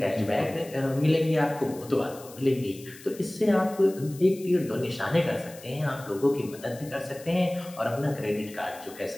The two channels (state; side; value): noise; left; hiss, 19 dB below the sound